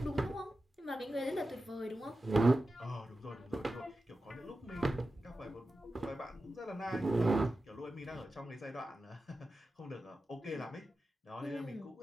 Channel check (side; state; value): both; normal; correlation 0.93